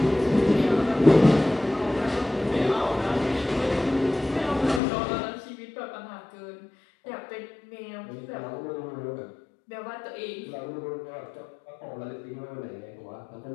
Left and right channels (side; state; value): right; drops out; at 4.8 s